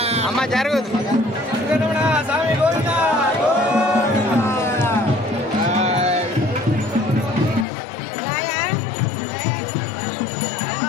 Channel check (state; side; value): drops out; right; at 7.7 s